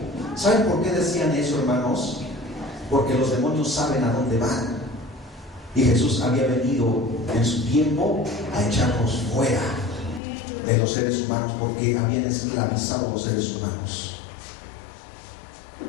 ¿Saben por qué decían eso, hermanos? Porque los demonios saben a dónde van. Y Jesús había venido en su tiempo a echarnos fuera de los seres humanos, porque habían esclavizado a los seres humanos.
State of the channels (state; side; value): drops out; right; at 10.2 s